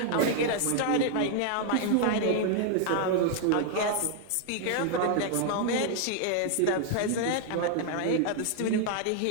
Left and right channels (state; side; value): different; both; correlation 0.00